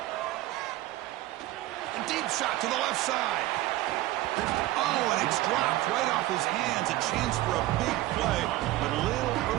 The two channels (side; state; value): left; quieter; 16.5 dB